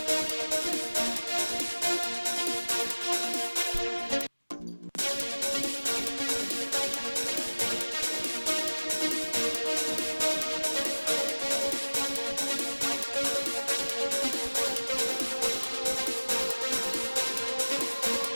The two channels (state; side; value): inverted; both; correlation -1.00